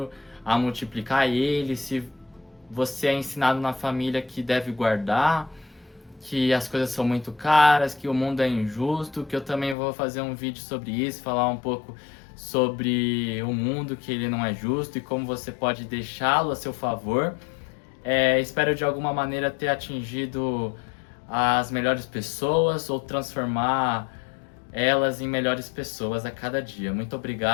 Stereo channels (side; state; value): right; drops out; at 9.8 s